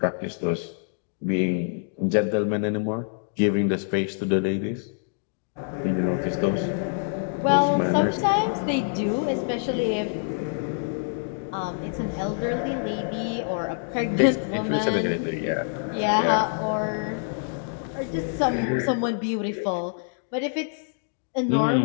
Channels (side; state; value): right; silent; digital silence